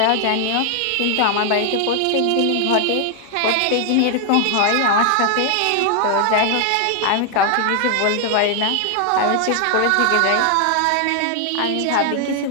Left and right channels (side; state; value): both; different; correlation 0.00